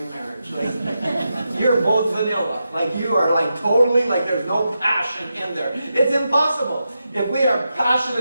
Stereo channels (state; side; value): inverted; both; correlation -0.88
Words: marriage. Like, you're both vanilla. Like you are like totally, like there's no passion in there. It's impossible. If we are